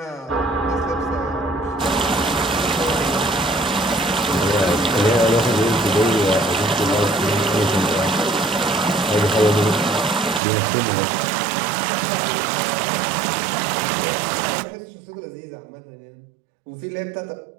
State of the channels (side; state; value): left; drops out; at 10.4 s